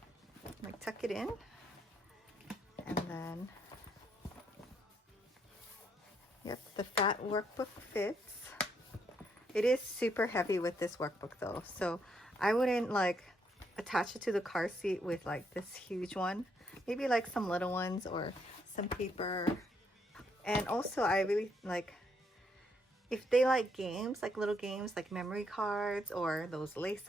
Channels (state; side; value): normal; both; correlation 0.74